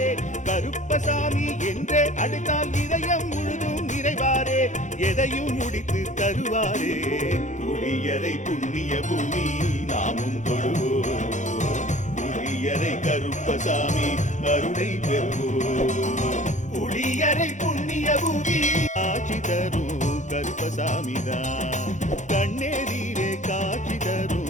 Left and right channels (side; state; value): right; late; 0.35 ms